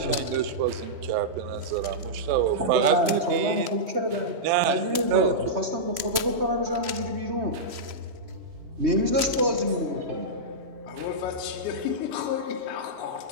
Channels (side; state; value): left; late; 3.0 ms